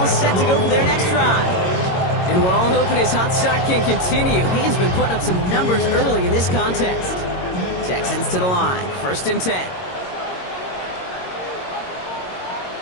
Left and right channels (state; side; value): late; right; 22 ms